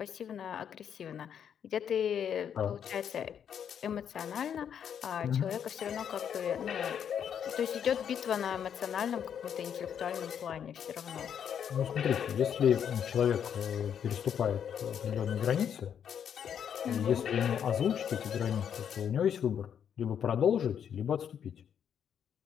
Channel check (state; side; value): quieter; right; 8.4 dB